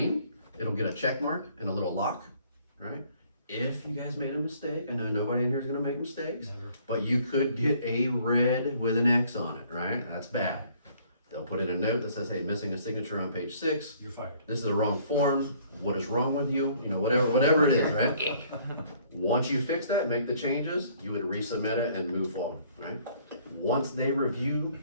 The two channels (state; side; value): inverted; both; correlation -0.60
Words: it'll get a check mark and a little lock, right? If you guys made a mistake, I know nobody in here is gonna make mistakes, Never. but you could get a red with an X on it, right? That's bad. They'll put in a note that says, hey, missing a signature on page 6. You're fired. This is the wrong form. What is wrong with you? You know, whatever it is, right? Once you fix that, make the changes, you would resubmit it and move forward, right? Once they review